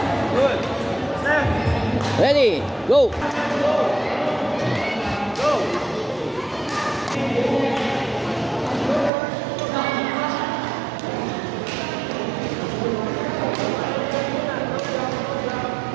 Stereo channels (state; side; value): drops out; left; at 9.1 s